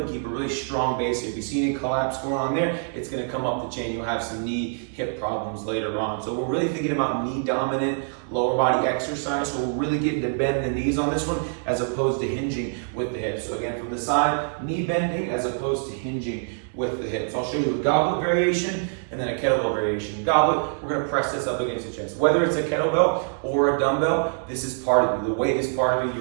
keep a really strong base. If you see any collapse going on there, it's going to come up the chain. You'll have some knee, hip problems later on. So we're really thinking about knee dominant lower body exercise. So we're really getting to bend the knees on this one as opposed to hinging with the hips. So again, from the side, knee bending as opposed to hinging with the hips. I'll show you a goblet variation and then a kettlebell variation. Goblet, we're going to press this up against the chest. Whether it's a kettlebell or a dumbbell, this is part of you. The weight is part of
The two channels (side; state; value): left; silent; 62 dB below the other